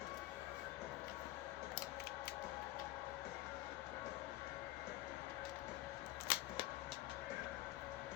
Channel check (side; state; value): right; quieter; 16.4 dB